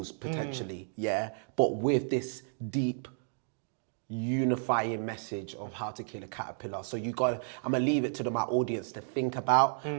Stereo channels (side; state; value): left; silent; digital silence